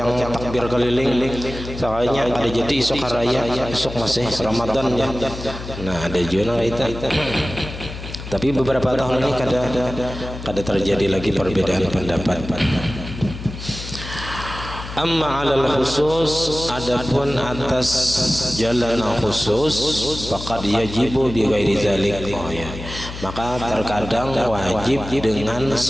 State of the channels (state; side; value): noise; left; hum, 10 dB below the sound